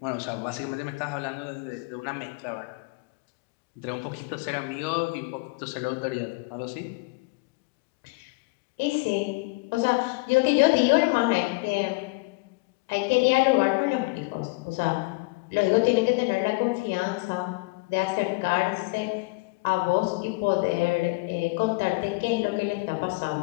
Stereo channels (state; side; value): quieter; right; 26.9 dB